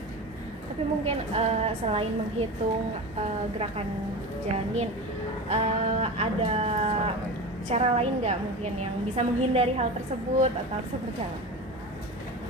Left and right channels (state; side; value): normal; both; correlation 0.28